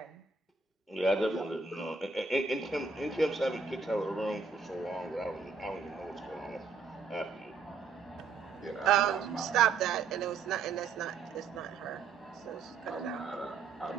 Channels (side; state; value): left; quieter; 4.8 dB